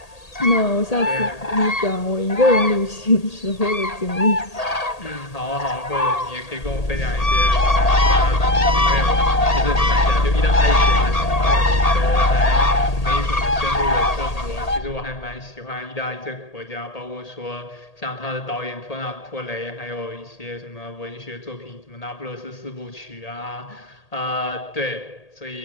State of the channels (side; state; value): right; late; 1.8 ms